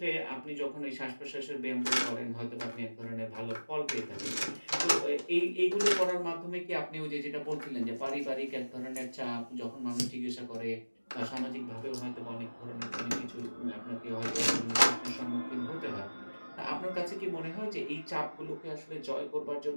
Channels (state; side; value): inverted; both; correlation -1.00